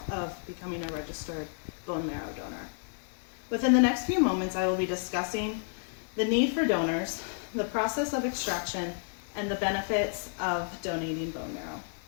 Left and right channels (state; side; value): silent; right; 57 dB below the other